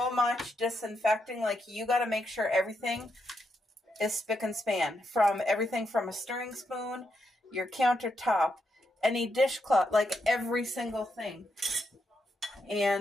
much disinfecting. Like, you got to make sure everything is spick and span. From everything from a stirring spoon, your countertop, any dishcloth, like every single thing.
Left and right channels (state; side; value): normal; both; correlation 0.81